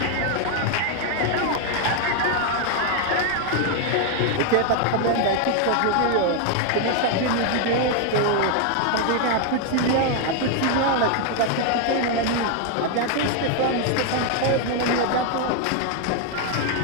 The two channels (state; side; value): different; both; correlation 0.01